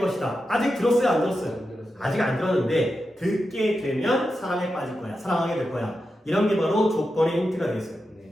아직 들었어요? 안 들었어요? 안 들었어요. 아직 안 들었는데 듣게 되면 사랑에 빠질 거야. 사랑하게 될 거야. 이런 게 바로 조건의 힌트가 되겠어요.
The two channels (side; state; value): both; normal; correlation 0.89